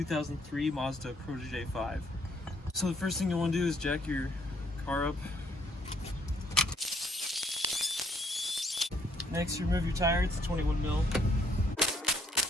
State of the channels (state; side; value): normal; both; correlation 0.67